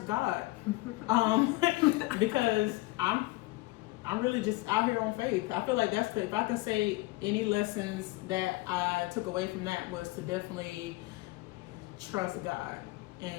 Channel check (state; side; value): quieter; right; 21.1 dB